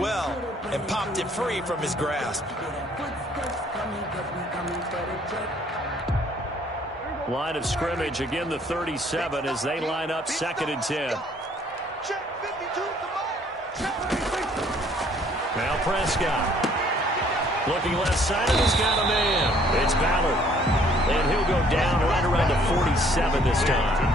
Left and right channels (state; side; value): normal; both; correlation 0.61